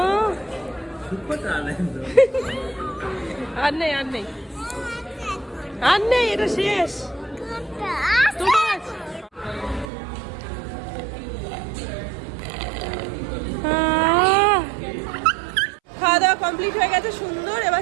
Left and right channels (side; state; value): left; drops out; at 9.9 s